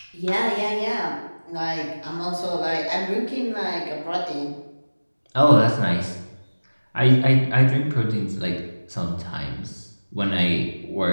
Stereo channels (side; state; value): both; inverted; correlation -1.00